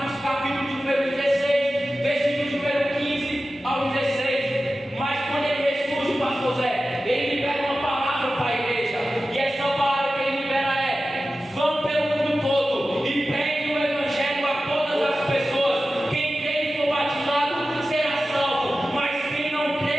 capítulo de número 16, versículo de número 15 ao 16. Mas quando ele ressurge, pastor Zé, ele libera uma palavra para a igreja, e essa palavra que ele libera é: vão pelo mundo todo e preguem o Evangelho a todas as pessoas. Quem crê e for batizado será salvo, mas quem não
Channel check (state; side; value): normal; both; correlation 0.94